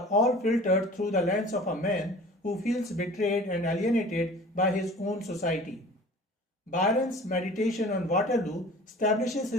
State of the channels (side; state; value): both; normal; correlation 0.43